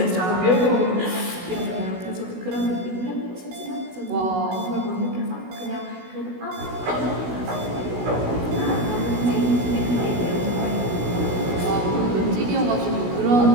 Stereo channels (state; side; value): late; left; 16 ms